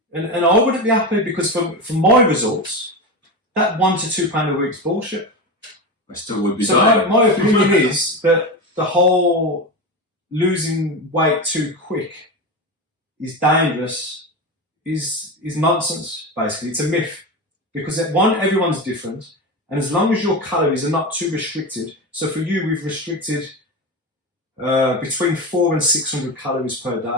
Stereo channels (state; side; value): normal; both; correlation 0.21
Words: and I wouldn't be happy, because for my results, that £1 to £2 a week's bullshit. I still would be. So my opinion is that the whole losing weight too quick is dangerous, is nonsense, basically. It's a myth. Because everyone's different, and as long as your calories are not too restricted, so for you, we've restricted between 400 and 600 calories per